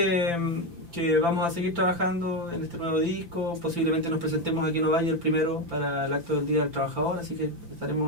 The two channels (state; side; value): late; left; 5.9 ms